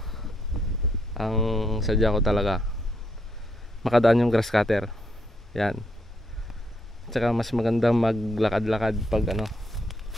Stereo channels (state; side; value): normal; both; correlation 0.76